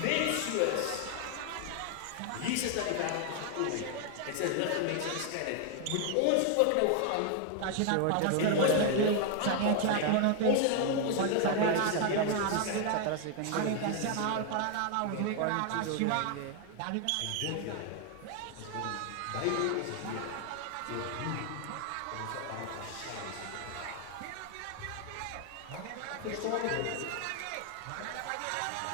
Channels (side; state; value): both; different; correlation 0.00